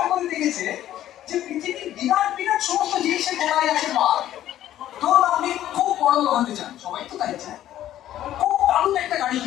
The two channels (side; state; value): right; quieter; 12.6 dB